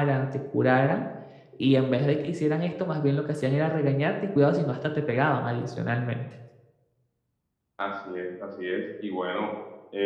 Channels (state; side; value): identical; both; correlation 1.00